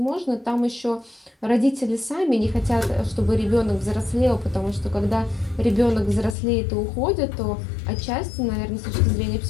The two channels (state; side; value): drops out; right; at 6.4 s